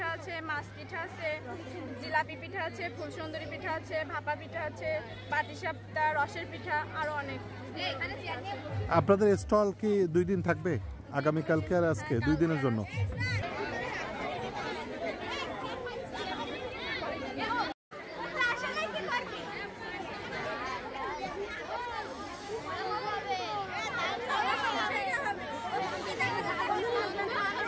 আছে, মাছ পিঠা আছে, জিলাপি পিঠা আছে, ফুলসুন্দরী পিঠা আছে, ভাপা পিঠা আছে, পাটিসাপটা, রসের পিঠা, আরো অনেক। আপনাদের স্টল কি 2 দিন থাকবে? আগামীকালকে আর আজকে 2 দিনের জন্য?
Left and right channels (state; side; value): identical; both; correlation 1.00